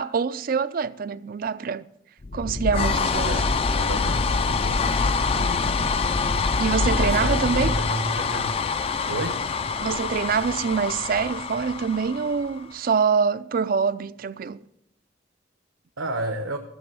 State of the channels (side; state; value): both; normal; correlation 0.09